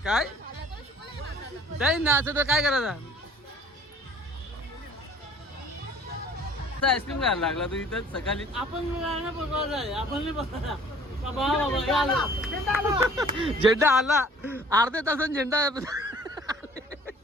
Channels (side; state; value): both; normal; correlation 0.52